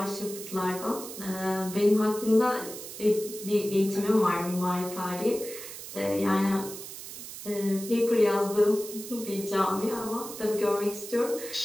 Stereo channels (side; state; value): right; noise; hiss, 11 dB below the sound